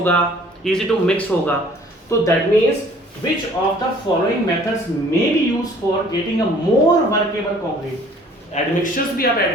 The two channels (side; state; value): both; normal; correlation 0.55